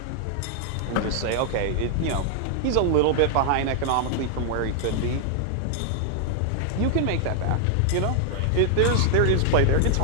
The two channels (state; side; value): different; both; correlation 0.00